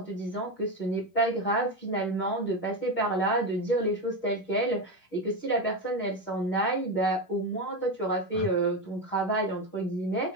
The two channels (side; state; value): right; late; 10 ms